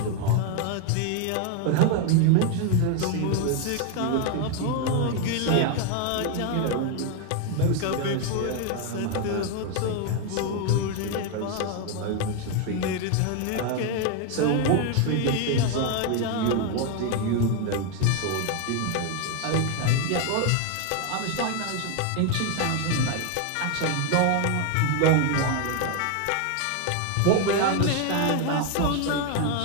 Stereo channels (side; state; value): both; different; correlation 0.01